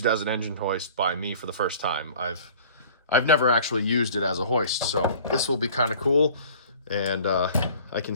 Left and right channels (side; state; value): both; inverted; correlation -0.48